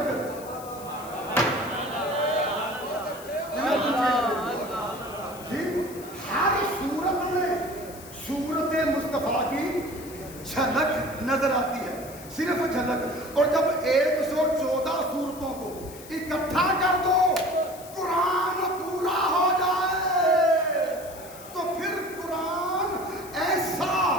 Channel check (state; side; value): noise; left; hiss, 17 dB below the sound